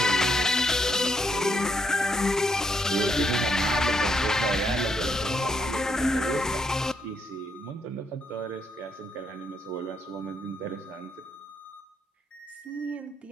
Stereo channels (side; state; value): both; normal; correlation 0.76